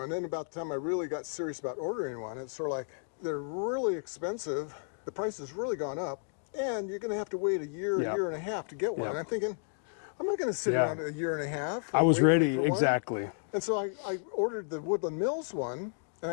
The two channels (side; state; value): right; silent; digital silence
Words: then about the time I really got serious about ordering one, it's sort of like, they're really expensive, the price has really gone up, and you're going to have to wait a year and a half to get one. And I'm thinking, I'm not going to sit around a year and a half. I was ready, for one. exactly. And so I ordered the Woodland Mills one, and